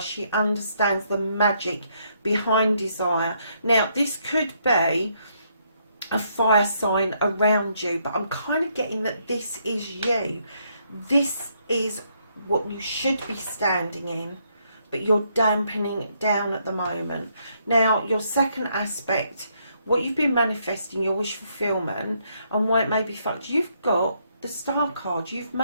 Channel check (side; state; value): both; inverted; correlation -0.73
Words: understands the magic behind desire. Now, this could be a fire sign around you, but I'm kind of getting that this is you. This is what you should be standing in, but you're dampening it down at the moment. Now, your second aspect, what you've been manifesting, your wish fulfillment, and why it may be fucked, you've got the Star card. You've